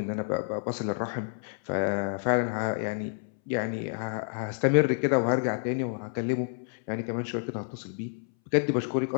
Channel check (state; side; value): silent; right; 59 dB below the other